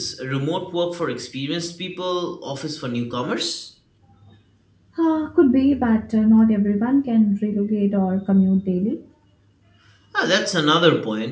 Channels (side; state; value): both; identical; correlation 1.00